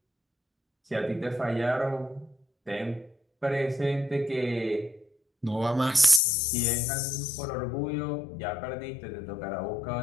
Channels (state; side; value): drops out; right; at 6.2 s